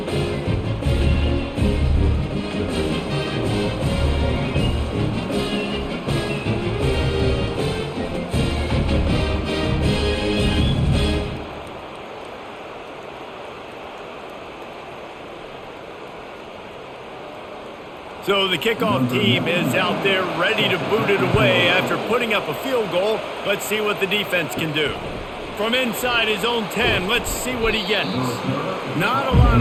So the kickoff team is out there ready to boot it away after putting up a field goal. Let's see what the defense can do. From inside his own 10, let's see what he gets. Not a lot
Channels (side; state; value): both; identical; correlation 1.00